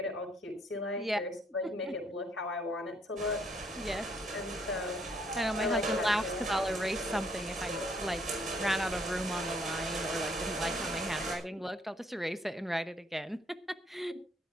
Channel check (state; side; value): normal; both; correlation 0.67